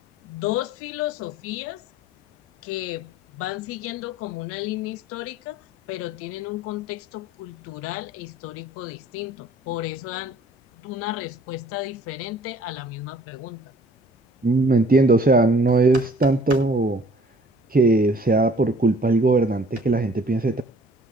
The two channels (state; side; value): normal; both; correlation 0.53